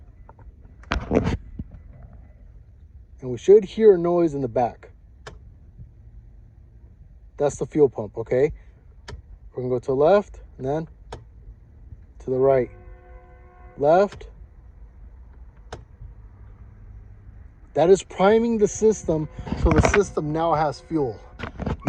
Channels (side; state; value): both; identical; correlation 1.00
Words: And we should hear a noise in the back. That's the fuel pump, okay? We're gonna go to the left, and then to the right. Left. That is priming the system, so the system now has fuel.